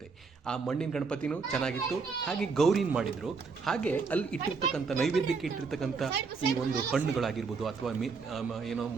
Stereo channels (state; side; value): quieter; left; 4.9 dB